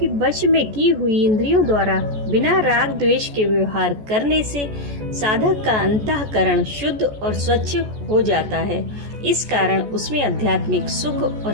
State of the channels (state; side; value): late; left; 14 ms